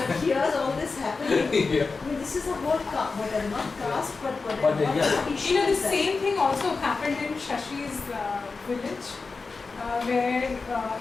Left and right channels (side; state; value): right; quieter; 4.3 dB